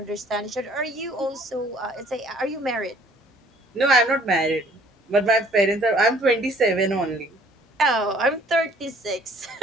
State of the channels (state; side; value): normal; both; correlation 0.57